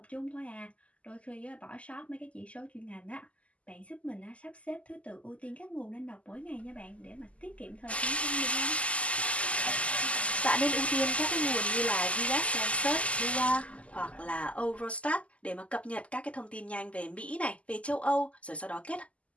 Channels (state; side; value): late; right; 0.064 ms